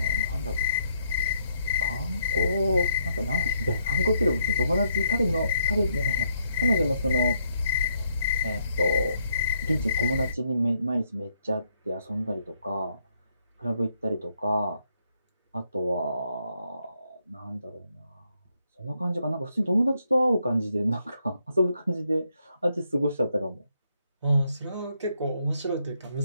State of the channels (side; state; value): both; inverted; correlation -0.74